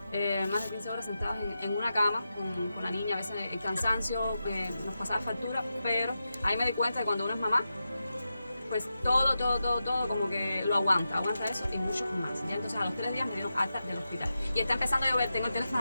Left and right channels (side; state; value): both; inverted; correlation -0.90